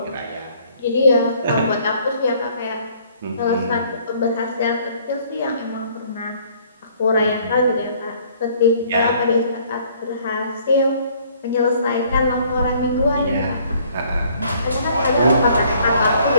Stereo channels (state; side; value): inverted; both; correlation -0.61